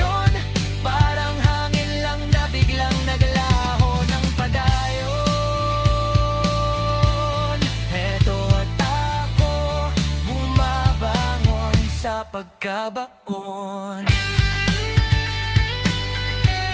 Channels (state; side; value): identical; both; correlation 1.00